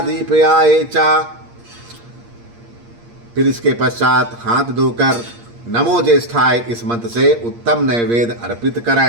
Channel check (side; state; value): left; late; 8.6 ms